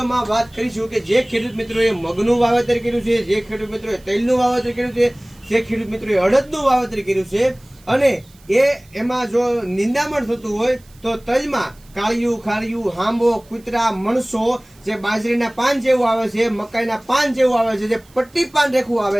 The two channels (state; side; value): noise; right; hiss, 29 dB below the sound